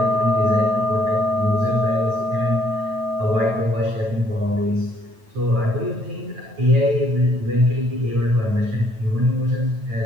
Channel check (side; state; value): left; late; 9.2 ms